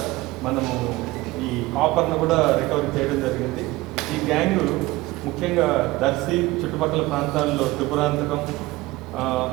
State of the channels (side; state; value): left; quieter; 19.8 dB